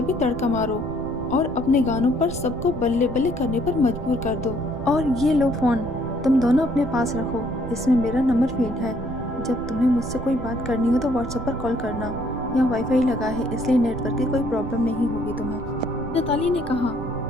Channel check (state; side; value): noise; right; rumble, 10 dB below the sound